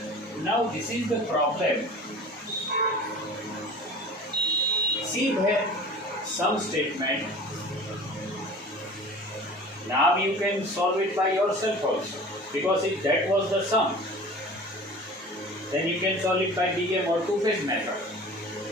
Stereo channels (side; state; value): both; normal; correlation 0.41